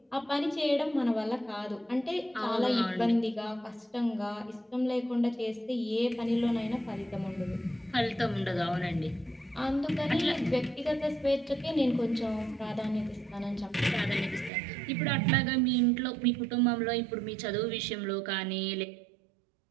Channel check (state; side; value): drops out; left; at 14.5 s